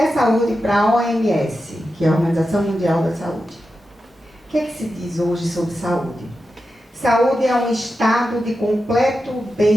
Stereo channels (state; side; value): normal; both; correlation 0.90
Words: saúde para a OMS, que é a Organização Mundial da Saúde. O que é que se diz hoje sobre saúde? Saúde é um estado de completo